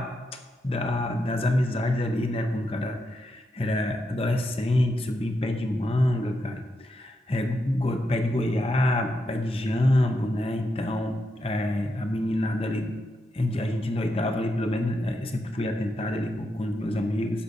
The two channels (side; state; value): both; normal; correlation 0.83